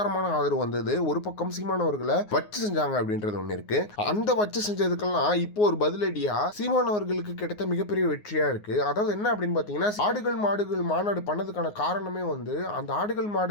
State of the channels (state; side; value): late; right; 9.6 ms